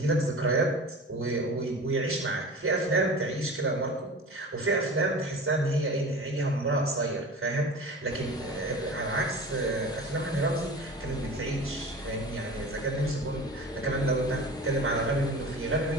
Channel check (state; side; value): normal; both; correlation 0.36